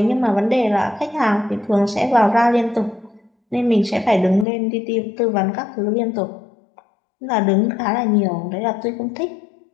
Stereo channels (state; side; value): drops out; right; at 4.5 s